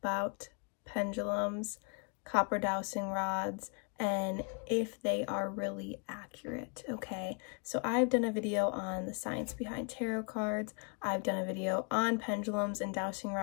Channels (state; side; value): quieter; right; 37.5 dB